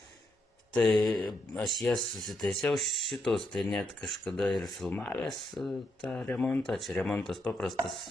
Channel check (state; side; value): normal; both; correlation 0.80